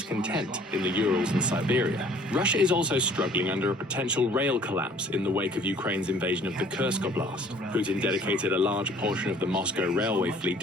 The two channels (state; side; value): normal; both; correlation 0.55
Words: in the Urals and Siberia. Russia is also struggling under a potential rail collapse in the wake of Ukraine's invasion of the Kursk Oblast. Putin dedicated a large portion of the Moscow railway fleet